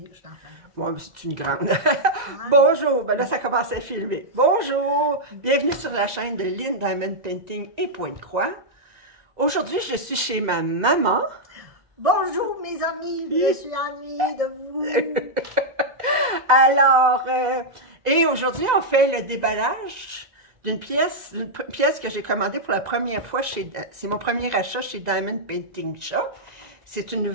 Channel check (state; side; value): late; left; 2.0 ms